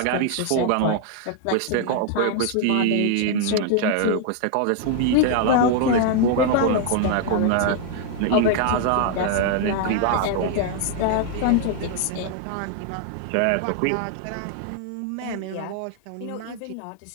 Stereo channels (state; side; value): different; both; correlation 0.00